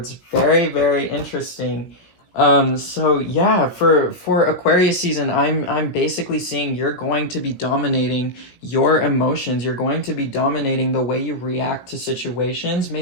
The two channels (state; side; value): late; right; 17 ms